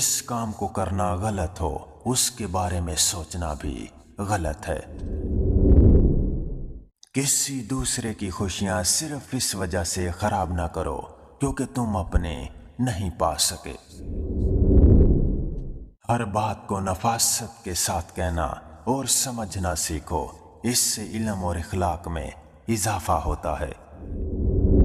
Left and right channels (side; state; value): both; identical; correlation 1.00